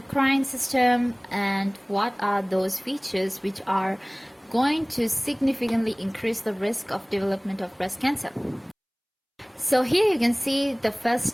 system and what are those features which are going to significantly increase the risk of development of breast cancer. So here you can see the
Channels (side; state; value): both; identical; correlation 1.00